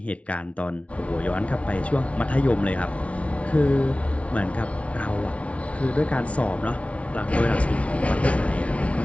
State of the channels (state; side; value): late; right; 0.063 ms